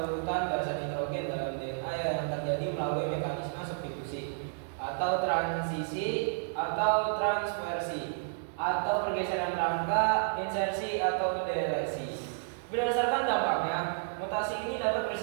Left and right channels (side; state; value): left; silent; digital silence